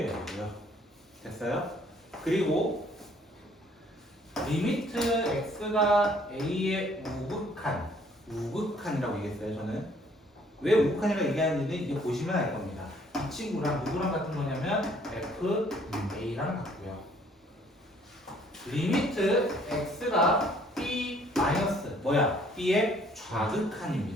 돼요. 됐어요? 그리고 리미트 x가 a의 우극한이라고 얘기했어요. 저는 왜 우극한이라고 얘기하는지는 이제 보시면 알 겁니다. 이 친구랑 누구랑 같은 거냐면 f a랑 같고요. 리미트 x가 b 마이너스 b의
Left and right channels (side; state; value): both; normal; correlation 0.61